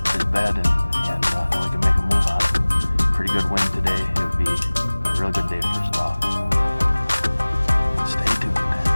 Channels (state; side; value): inverted; both; correlation -1.00